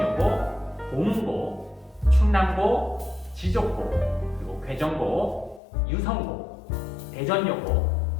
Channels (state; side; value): drops out; right; at 5.6 s